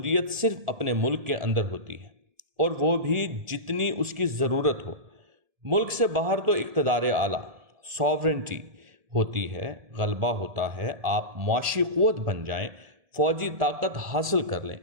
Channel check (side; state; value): left; late; 1.7 ms